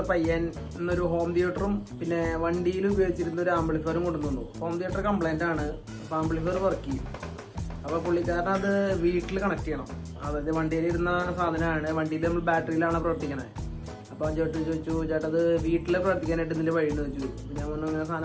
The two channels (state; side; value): identical; both; correlation 1.00